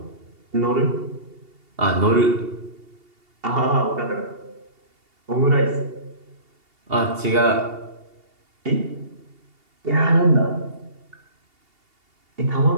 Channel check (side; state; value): left; late; 2.8 ms